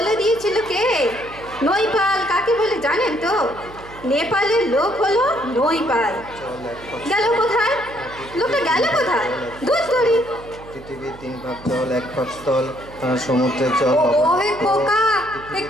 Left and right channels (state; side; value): noise; right; hum, 19 dB below the sound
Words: দিয়েছিল। কে নৈপাল কাকে বলে জানেন তো? নেপালের লোক হলো নৈপাল। গেল কোথায়? লোকটা গেল কোথায়? দুধ তরি। পৃথিবীর 3 ভাগ জল, 1 ভাগ স্থল, সমুদ্রের জল ও হে খোকা,